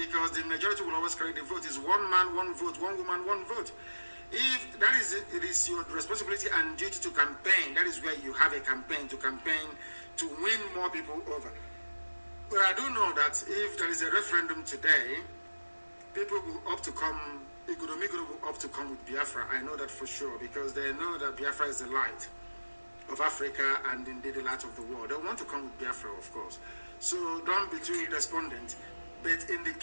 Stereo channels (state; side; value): inverted; both; correlation -1.00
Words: the majority will always carry the vote. It's one man, one vote, one woman, one vote. If that is it, it is your responsibility and duty to campaign. That is where you have a campaign to win more people over. But I do know that if there is a referendum today, people will opt to come, Ikudomigodo will opt to come with Biafra. I know that for sure, because they know that Biafra is the light of Africa and indeed the light of the world. They want to come with Biafra, of course. So don't be too despondent. But in the